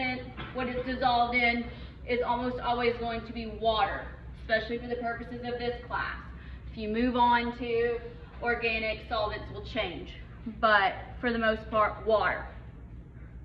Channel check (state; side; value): identical; both; correlation 1.00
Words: what it's dissolved in, is almost always going to be water, especially for the purposes of this class. If you move on to organic, solvents will change, but for the most part, water.